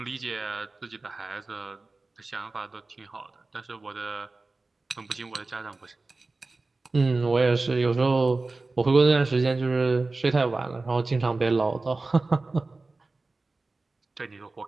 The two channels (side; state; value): left; quieter; 3.5 dB